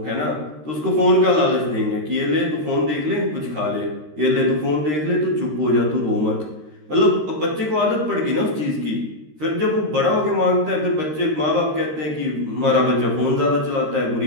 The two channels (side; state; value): left; late; 13 ms